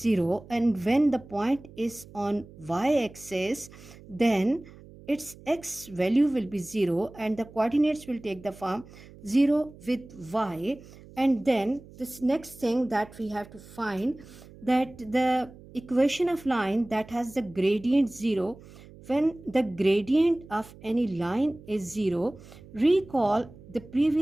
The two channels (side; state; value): right; noise; hum, 20 dB below the sound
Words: and when the point is on y-axis, then its x value will be 0 and the coordinates will take the form 0 with y. And then this next thing that we have to find, that the equation of line that has the gradient 0, when the gradient of any line is 0, recall the